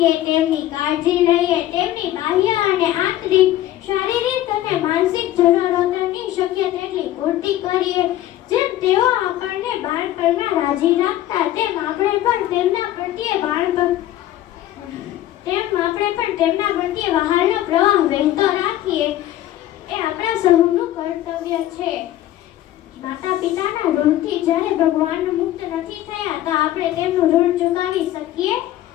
તેમની કાળજી લઈએ, તેમની બાહ્ય અને આંતરિક, શારીરિક અને માનસિક જરૂરિયાતોની શક્ય તેટલી પૂર્તિ કરીએ. જેમ તેઓ આપણને બાળપણમાં રાજી રાખતા, તેમ આપણે પણ તેમના પ્રત્યે વહાલનો પ્રવાહ વહેતો રાખીએ. એ આપણા સૌનું કર્તવ્ય છે. માતા પિતાના ઋણથી જ્યારે ભગવાન મુક્ત નથી થયા, તો આપણે તેમનું ઋણ ચુકાવી શકીએ.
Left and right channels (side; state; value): right; quieter; 13.7 dB